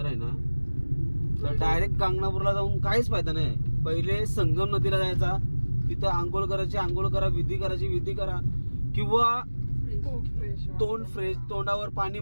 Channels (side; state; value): both; inverted; correlation -1.00